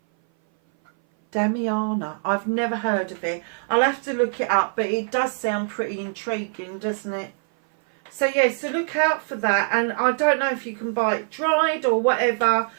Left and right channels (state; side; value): silent; left; 58 dB below the other